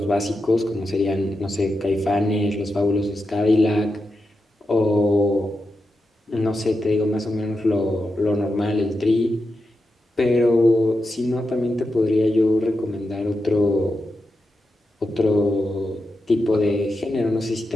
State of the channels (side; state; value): both; normal; correlation 0.88